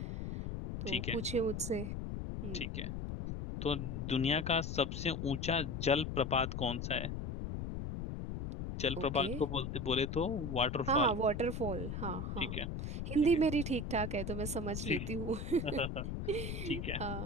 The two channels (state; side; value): noise; left; rumble, 4 dB below the sound